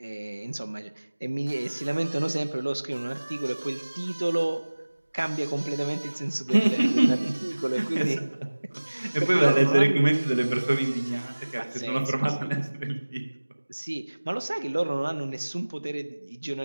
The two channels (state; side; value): inverted; both; correlation -1.00